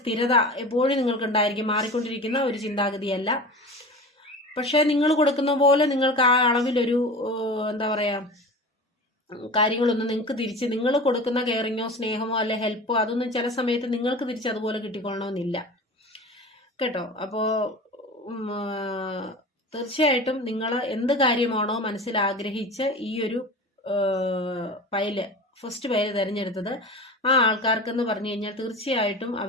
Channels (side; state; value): both; normal; correlation 0.34